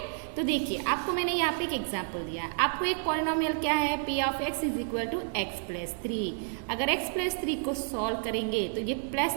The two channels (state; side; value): silent; left; digital silence